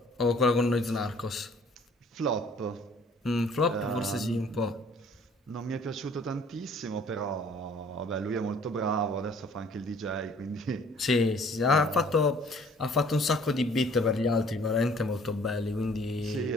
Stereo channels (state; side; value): normal; both; correlation 0.56